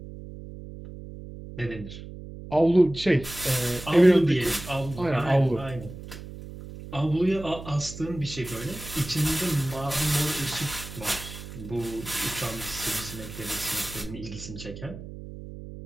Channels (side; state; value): right; noise; hum, 12 dB below the sound